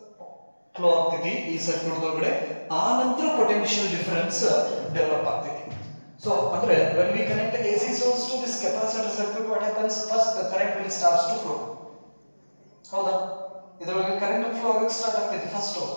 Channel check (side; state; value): both; inverted; correlation -1.00